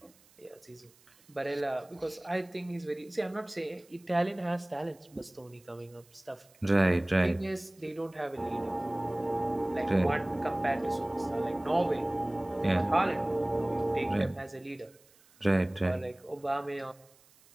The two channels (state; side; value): noise; right; hiss, 29 dB below the sound